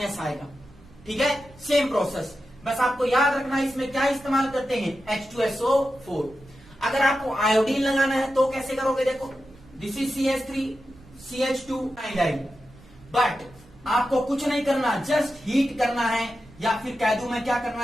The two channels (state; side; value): noise; right; rumble, 24 dB below the sound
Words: आएगा, ठीक है। सेम प्रोसेस, बस आपको याद रखना इसमें क्या इस्तेमाल करते हैं, H2SO4। अगर आपको आयोडीन लगाना है तो कैसे करोगे, देखो this is CH3 CH2 iodine, but आपको कुछ नहीं करना, जस्ट हीट करना है, या फिर कह दूं मैं क्या करना